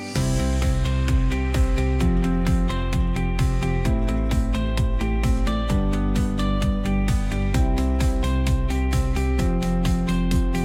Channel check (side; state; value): both; identical; correlation 1.00